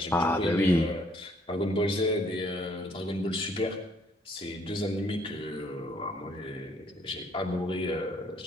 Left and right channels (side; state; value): both; normal; correlation 0.65